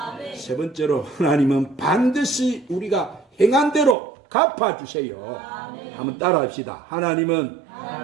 세 번째로 하나님은 반드시 우리가 행한 대로 갚아주세요. 아멘. 한번 따라합시다. 하나님은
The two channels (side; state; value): left; drops out; at 4.0 s